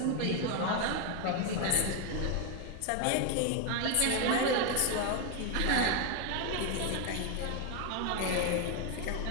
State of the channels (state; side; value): different; both; correlation 0.01